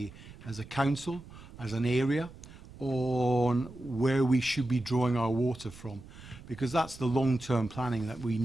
council, as an area, on where we should be drawing our water from? Because that's the long-term planning that we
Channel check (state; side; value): noise; right; rumble, 18 dB below the sound